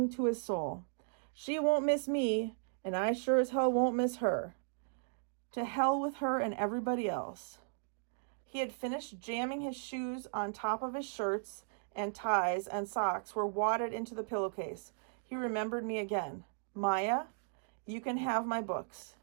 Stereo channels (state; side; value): silent; left; digital silence